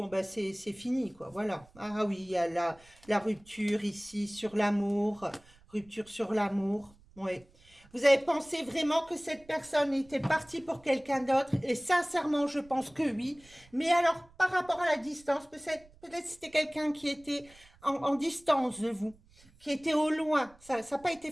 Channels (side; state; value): right; noise; rumble, 27 dB below the sound